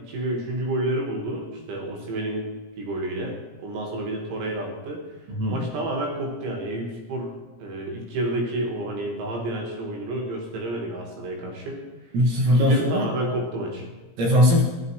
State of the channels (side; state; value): left; late; 17 ms